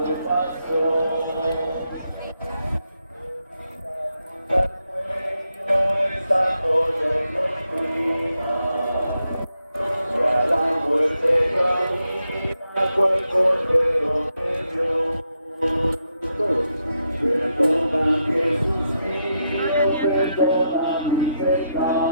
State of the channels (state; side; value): inverted; both; correlation -0.82